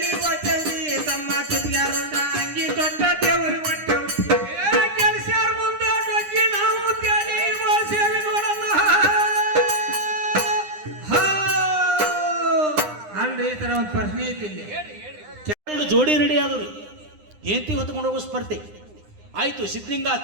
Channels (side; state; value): left; late; 9.8 ms